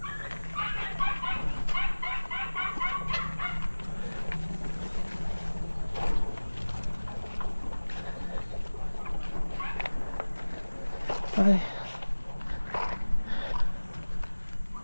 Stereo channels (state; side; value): inverted; both; correlation -1.00